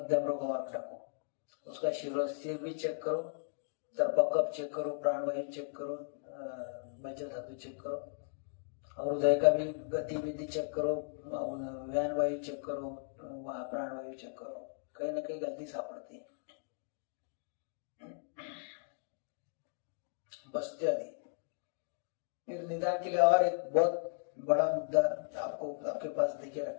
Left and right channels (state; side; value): silent; right; digital silence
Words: रोग मार्ग डाको, उसका सिर भी चेक करो, तर्पकप चेक करो, प्राणवायु चेक करो, मज्जा धातु चेक करो, और हृदय का भी गतिविधि चेक करो, व्यान वायु चेक करो, वहां प्राणवायु चेक करो, कहीं ना कहीं गलती सापड़ती है। बस्ती आदि। फिर निदान के लिए और एक बहुत बड़ा मुद्दा आपको आपके पास देखे